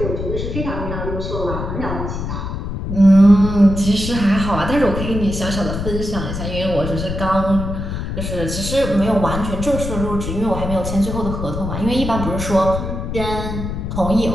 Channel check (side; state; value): left; noise; rumble, 5 dB below the sound